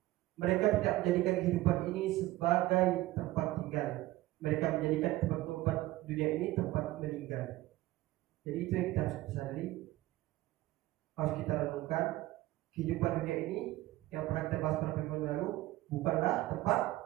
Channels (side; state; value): left; quieter; 17.3 dB